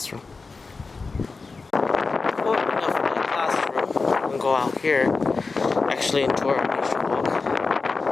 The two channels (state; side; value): quieter; right; 4.2 dB